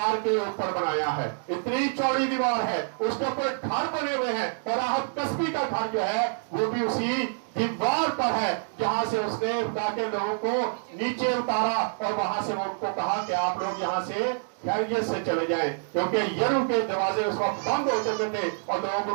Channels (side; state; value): left; silent; digital silence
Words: के ऊपर बनाया है। इतनी चौड़ी दीवार है, उसके ऊपर घर बने हुए हैं। और राहत कस्बी का घर जो है वो भी उसी दीवार पर है जहां से उसने खुदा के लोगों को नीचे उतारा, और वहां से वो उनको कहा कि आप लोग यहाँ से खैरियत से चले जाएं, क्योंकि यरूह के दरवाजे उस वक्त बंद हो चुके थे और